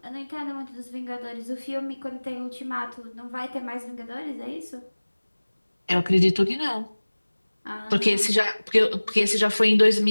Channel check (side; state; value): both; inverted; correlation -1.00